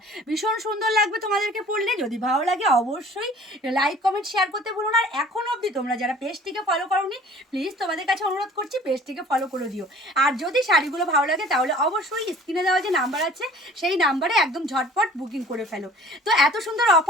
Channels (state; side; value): normal; both; correlation 0.49